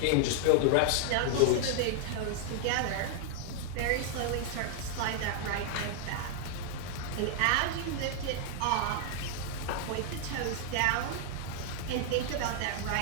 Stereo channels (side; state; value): both; different; correlation 0.00